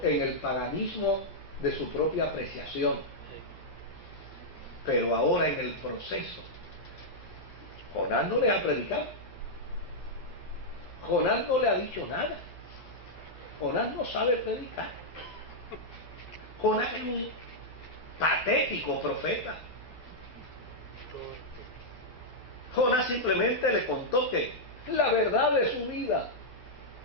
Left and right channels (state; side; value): late; right; 12 ms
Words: en el paganismo de su propia apreciación. Pero ahora, en el proceso, Jonás no le ha predicado. Jonás no le ha dicho nada. Jonás no sabe predicar. Jonás es un patético profeta. Jonás simplemente le contó que la verdad de su vida